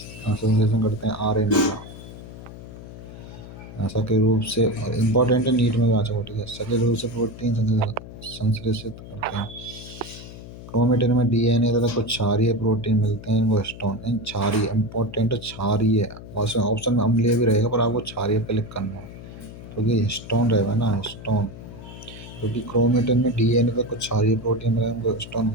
करते हैं, आरएनए का। सक्रिय रूप से इम्पोर्टेंट है, नीट में भी आ चुका, ठीक है। सक्रिय रूप से प्रोटीन संश्लेषित करते हैं। क्रोमेटिन में डीएनए तथा कुछ क्षारीय प्रोटीन मिलते हैं, वो हिस्टोन, इन क्षारीय इम्पोर्टेंट क्षारीय, ऑप्शन में अम्लीय भी रहेगा पर आपको क्षारीय पे क्लिक करना है, क्योंकि हिस्टोन रहेगा ना, हिस्टोन, क्योंकि क्रोमेटिन में डीएनए पे कुछ क्षारीय प्रोटीन मिले हैं, वो हिस्टोन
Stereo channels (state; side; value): noise; left; hum, 14 dB below the sound